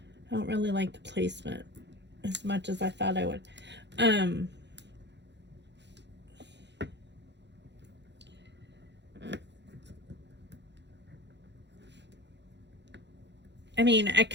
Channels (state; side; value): late; left; 0.51 ms